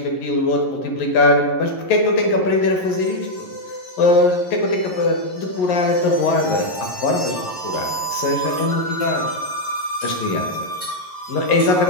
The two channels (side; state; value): right; late; 11 ms